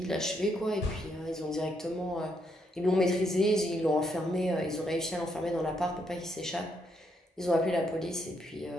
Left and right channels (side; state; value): both; normal; correlation 0.76